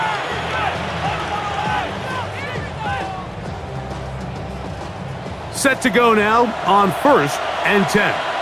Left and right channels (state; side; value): identical; both; correlation 1.00